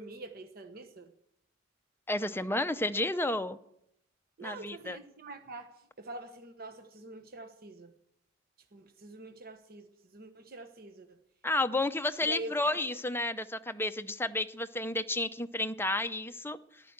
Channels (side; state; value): both; normal; correlation 0.31